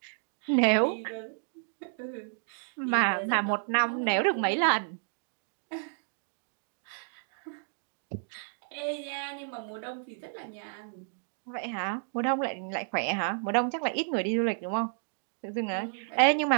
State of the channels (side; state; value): left; silent; digital silence